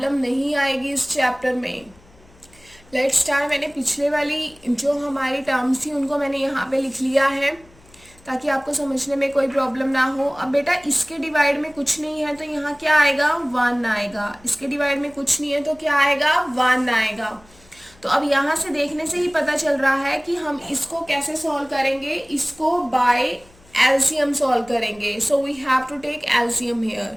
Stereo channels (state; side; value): noise; left; hum, 28 dB below the sound